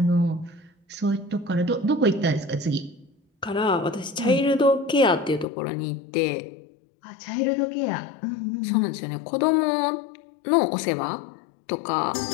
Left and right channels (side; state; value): right; drops out; at 5.5 s